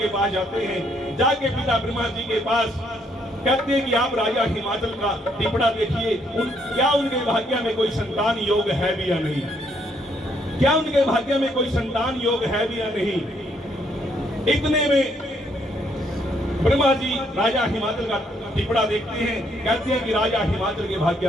पास जाते हैं। जाके पिता ब्रह्मा जी के पास कहते हैं कि आप राजा हिमाचल का टिपड़ा देखिए, क्या उनके भाग्य में कोई संतान योग है भी या नहीं, क्या उनके भाग्य में कोई संतान योग है भी या नहीं। इतने में ब्रह्मा जी राजा हिमाचल का टिपड़ा देखते हैं, कहते हैं कि राजा हिमाचल के भाग्य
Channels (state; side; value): normal; both; correlation 0.70